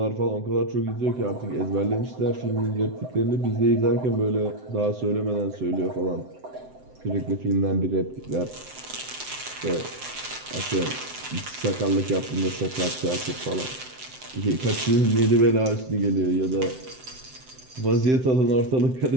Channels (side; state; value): left; late; 7.8 ms